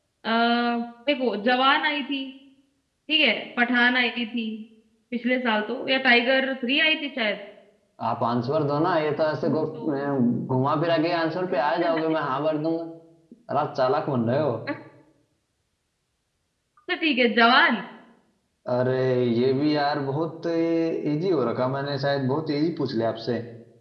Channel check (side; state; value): both; identical; correlation 1.00